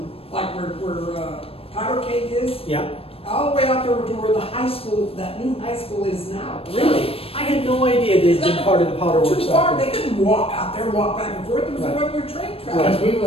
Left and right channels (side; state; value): right; late; 0.28 ms